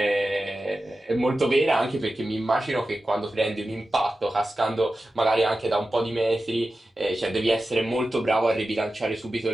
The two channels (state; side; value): normal; both; correlation 0.93